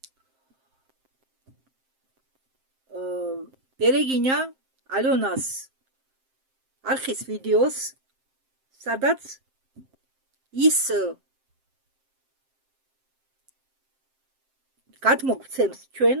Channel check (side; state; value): left; late; 7.6 ms